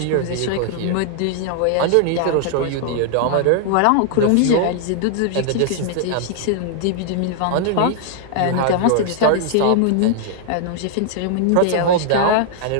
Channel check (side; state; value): both; different; correlation 0.00